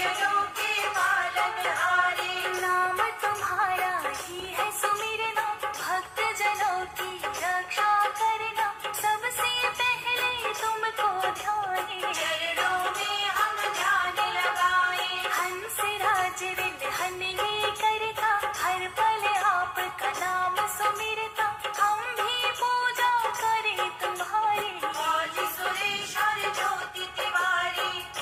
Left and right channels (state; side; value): identical; both; correlation 1.00